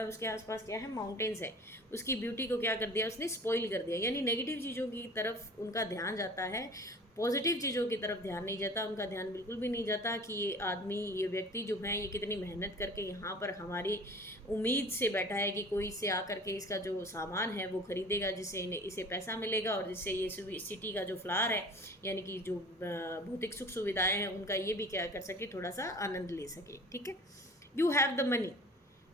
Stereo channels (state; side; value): normal; both; correlation 0.43